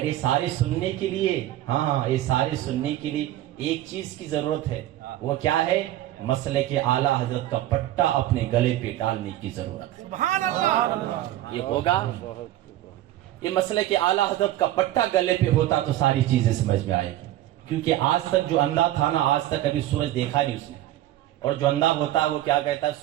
یہ سارے سننے کے لیے، ہاں یہ سارے سننے کے لیے ایک چیز کی ضرورت ہے. وہ کیا ہے؟ مسلک اعلیٰ حضرت کا پٹا اپنے گلے پہ ڈالنے کی ضرورت ہے. سبحان اللہ. یہ ہوگا یہ مسئلہ کہ اعلیٰ حضرت کا پٹا گلے پہ ہوتا تو ساری چیزیں سمجھ میں آئے گی، کیونکہ آج تک جو اندھا تھا نا، آج تک ابھی سورج دیکھا نہیں اس نے، اور جو اندھا ہوتا ہے وہ کیا کہتا ہے،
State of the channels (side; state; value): left; quieter; 14.2 dB